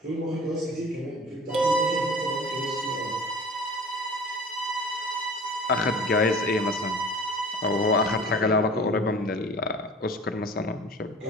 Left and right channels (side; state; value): both; normal; correlation 0.42